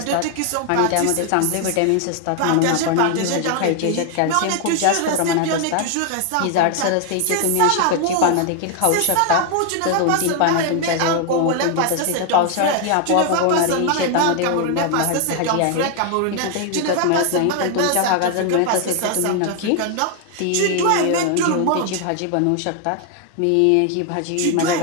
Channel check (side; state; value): both; different; correlation 0.00